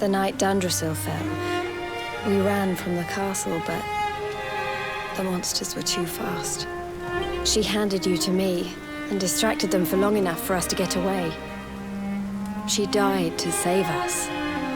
night Dundrasil fell, we ran from the castle, but the monsters were too fast. She handed you to me and distracted them for long enough for us to get away. She died to save us.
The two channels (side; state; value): both; identical; correlation 1.00